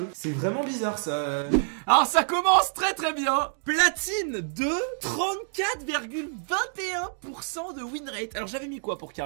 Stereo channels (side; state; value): left; silent; digital silence